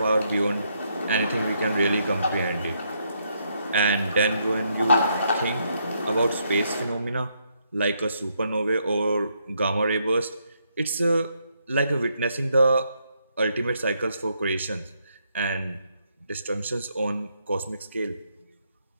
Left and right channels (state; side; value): inverted; both; correlation -0.76